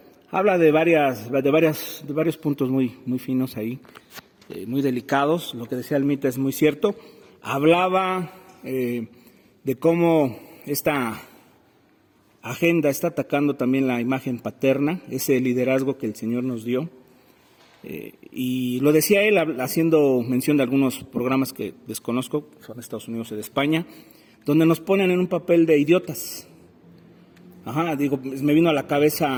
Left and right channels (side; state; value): both; identical; correlation 1.00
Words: habla de varios puntos muy finos ahí, muy delicados. Lo que decía Almita es muy cierto. Hablaba de cómo esta agenda está atacando también la imagen paterna, ese liderazgo que el Señor nos dio. Y lo decía él haciendo mención de algunos programas que desconozco, son de Estados Unidos y de España, donde nos ponen en un papel de idiotas. Me vino a la